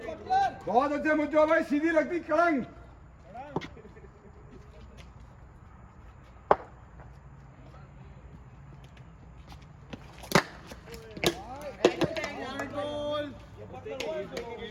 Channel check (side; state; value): both; identical; correlation 1.00